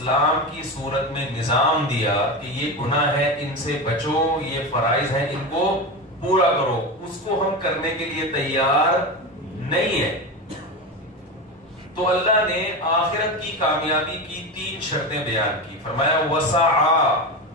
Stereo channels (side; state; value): both; normal; correlation 0.21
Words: کی صورت میں نظام دیا کہ یہ گناہ ہے ان سے بچو، یہ فرائض ہیں ان کو پورا کرو، اس کو ہم کرنے کے لیے تیار نہیں ہے. تو اللہ نے آخرت کی کامیابی کی 3 شرطیں بیان کی. فرمایا وَسَعَى